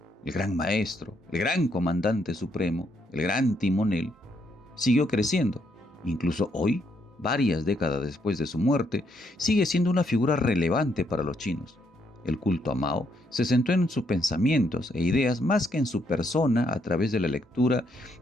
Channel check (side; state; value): both; normal; correlation 0.74